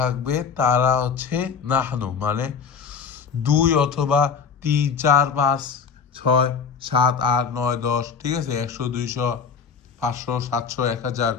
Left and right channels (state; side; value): quieter; right; 6.1 dB